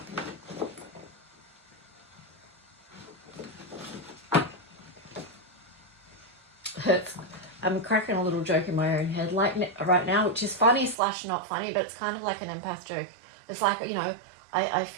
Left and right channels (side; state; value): left; drops out; at 11.0 s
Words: I'm cracking a little joke in my own head like right now, which is funny / not funny, but it's kind of like an empath joke. It's like, you know, I